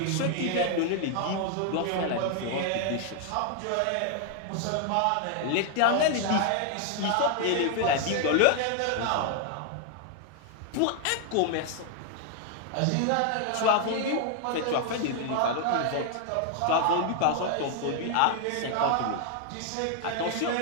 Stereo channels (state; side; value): different; both; correlation 0.00